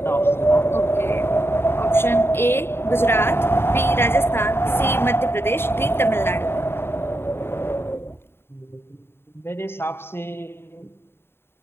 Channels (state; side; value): late; right; 0.11 ms